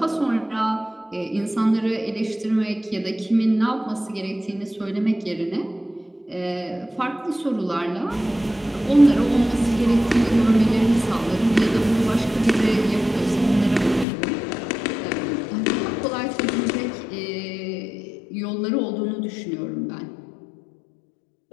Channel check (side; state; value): right; drops out; at 14.1 s